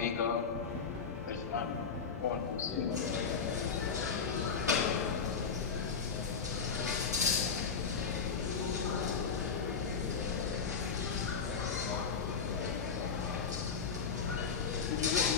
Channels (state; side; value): quieter; right; 5.7 dB